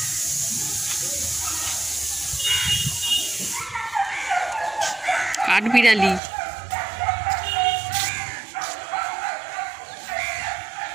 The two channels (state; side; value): drops out; left; at 6.2 s